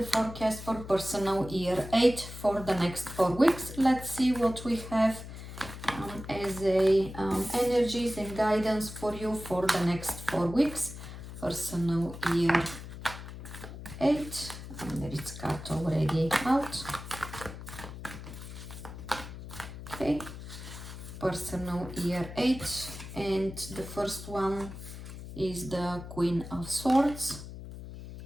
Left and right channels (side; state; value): left; noise; hum, 11 dB below the sound